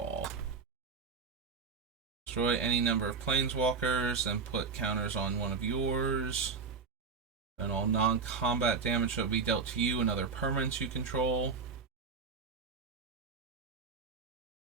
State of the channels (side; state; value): left; quieter; 5.1 dB